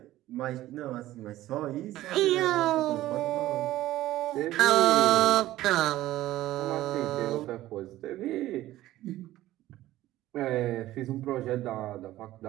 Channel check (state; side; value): quieter; left; 15.2 dB